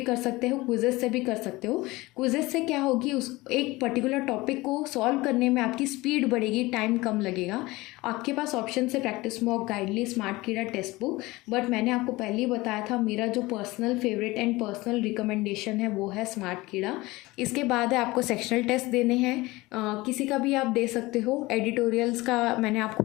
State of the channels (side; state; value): right; quieter; 20.8 dB